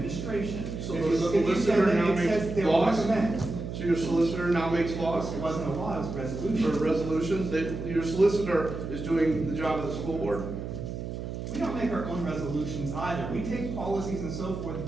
So If the you look at the solicitor agenda, now it says makes they'll laws? recommend. So your solicitor now makes laws It wasn't a law, it was a for resolution. resolutions, that your solicitor is doing the job of the school board? We don't make our own resolutions either. We take policies and so forth and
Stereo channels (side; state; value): right; noise; hum, 7 dB below the sound